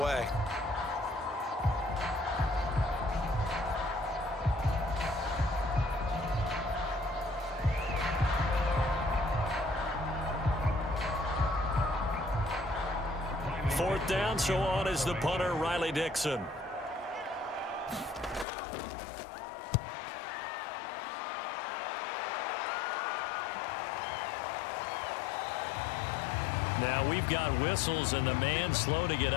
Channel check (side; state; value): right; drops out; at 18.4 s